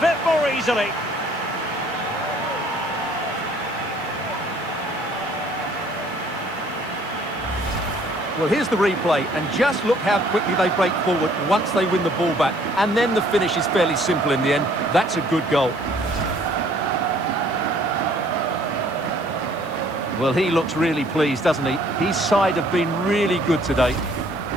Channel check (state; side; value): noise; right; hiss, 27 dB below the sound